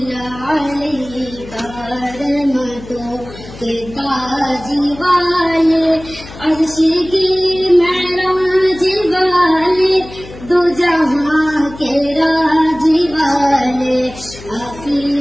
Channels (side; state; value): left; noise; hum, 16 dB below the sound